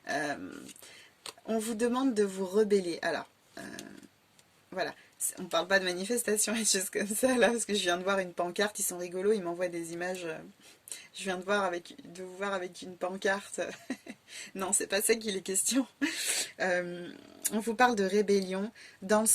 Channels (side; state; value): both; identical; correlation 1.00